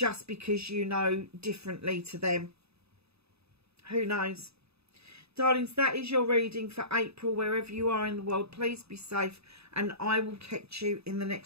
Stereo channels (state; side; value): late; left; 0.79 ms